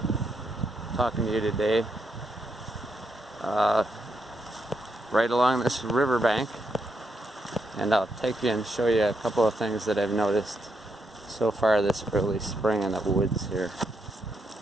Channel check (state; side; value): normal; both; correlation 0.80